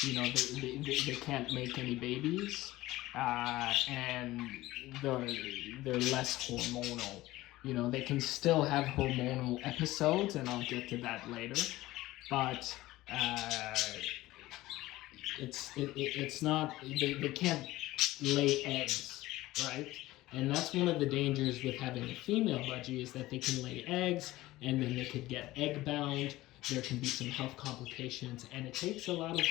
they can't make any babies, and they're less hormonal. They can still have hormonal episodes, and I'll get to that later, but it's not, they can't lay eggs, right? And that's one of the dangers with having a female budgie, is that they can lay eggs, and then they could get egg bound. There can be some health complications, and it takes a lot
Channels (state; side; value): quieter; right; 17.5 dB